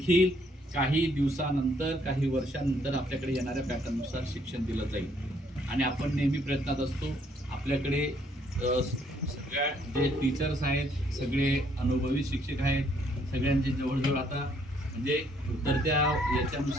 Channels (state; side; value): normal; both; correlation 0.67